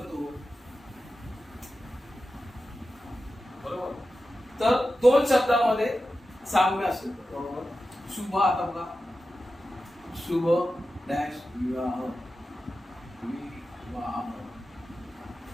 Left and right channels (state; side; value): normal; both; correlation 0.92